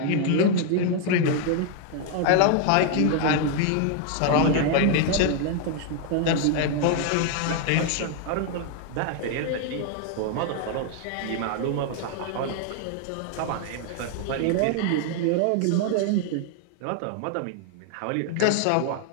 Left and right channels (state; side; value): different; both; correlation 0.00